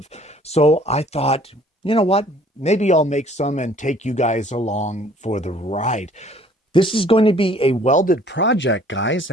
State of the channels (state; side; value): normal; both; correlation 0.56